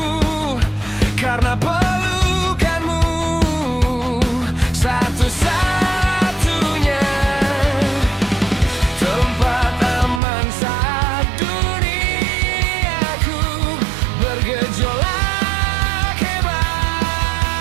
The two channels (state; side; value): drops out; left; at 10.2 s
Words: Karena pelukanmu satu-satunya tempat aman saat duniaku bergejolak hebat.